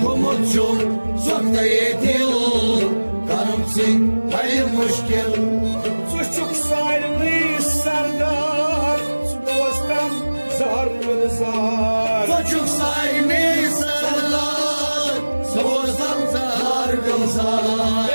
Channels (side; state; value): both; inverted; correlation -1.00